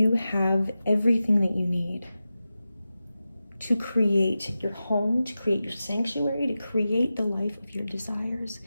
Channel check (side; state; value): both; inverted; correlation -0.93